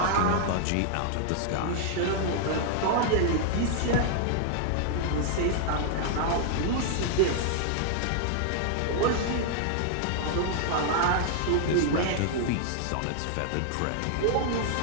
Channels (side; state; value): both; different; correlation -0.01